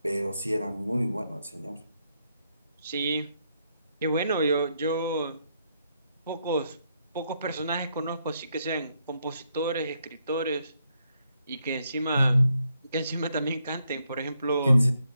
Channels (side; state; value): both; inverted; correlation -0.77